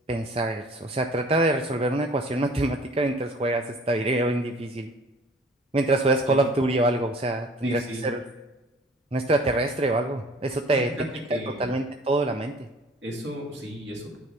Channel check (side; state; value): both; normal; correlation 0.50